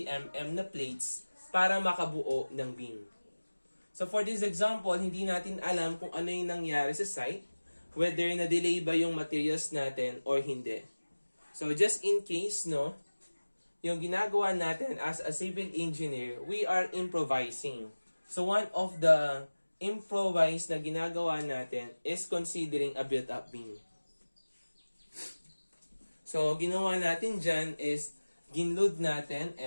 mm na plates para makabuo ng beam. So, for this example, hindi natin alam kung ano yung nangyari sa site, whether na-delay ba yung materials natin or hindi. So, just in case, no, yung ginagawa natin as a civil engineer, we are improvising. So one of the improvise na ginagawa natin is considering a built-up beam. So ginawa natin dyan is ginload natin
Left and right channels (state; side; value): inverted; both; correlation -1.00